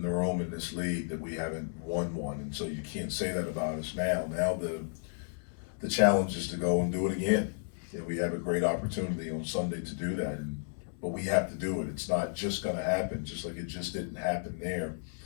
the room in this league, that we haven't won one, and so you can't say that about us now. Now the challenge is to go and do it again. We have a great opportunity on Sunday to do that, but we have to do it. It's not just going to happen, just like it just didn't happen there.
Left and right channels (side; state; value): right; silent; 56 dB below the other